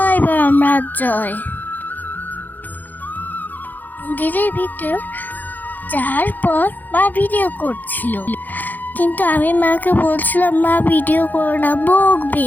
বর্মা জয়। মন্দিরের ভিতর যাওয়ার পর মা ভিডিও করছিল, কিন্তু আমি মাকে বলছিলাম মা ভিডিও করো না, বকবে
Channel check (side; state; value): right; late; 0.085 ms